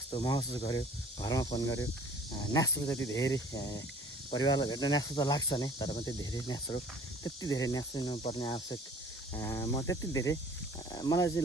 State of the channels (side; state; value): both; normal; correlation 0.49